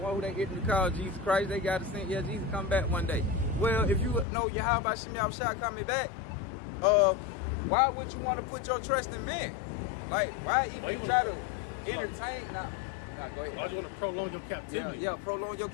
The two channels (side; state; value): right; drops out; at 4.2 s